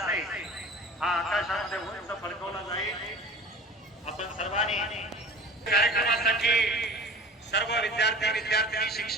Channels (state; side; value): normal; both; correlation 0.40